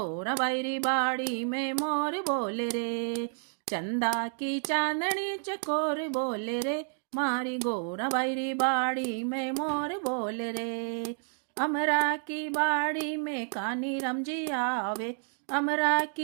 बैरी बाड़ी में मोर बोले रे। चंदा की चांदनी चकोर बोले रे, मारी गोरा बैरी बाड़ी में मोर बोले रे। अमरा की बाड़ी में कानी राम जी आवे, अमरा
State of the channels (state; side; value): silent; left; 58 dB below the other